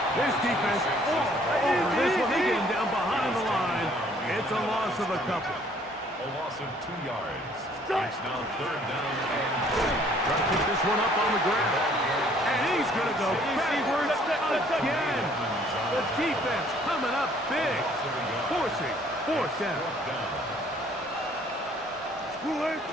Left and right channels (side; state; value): both; normal; correlation 0.60